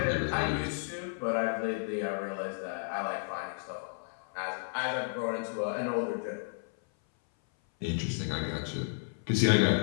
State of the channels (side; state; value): right; silent; 56 dB below the other